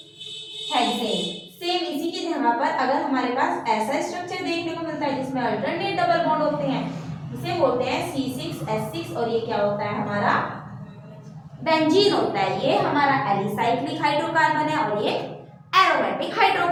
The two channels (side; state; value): both; identical; correlation 1.00